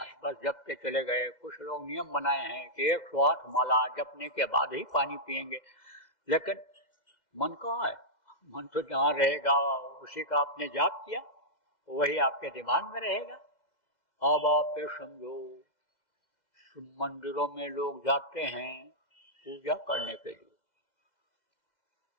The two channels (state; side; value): late; right; 2.0 ms